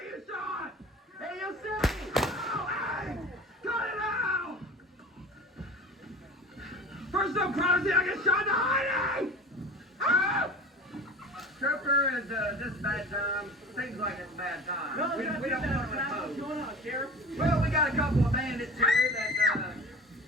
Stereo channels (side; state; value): both; normal; correlation 0.37